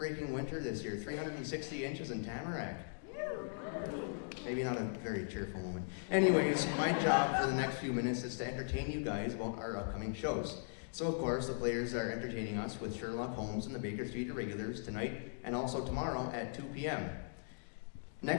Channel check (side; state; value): right; silent; digital silence